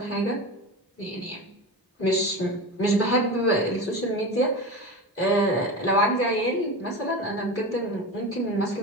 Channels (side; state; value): both; normal; correlation 0.26